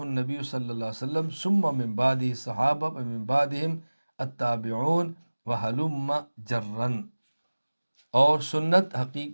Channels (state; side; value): inverted; both; correlation -1.00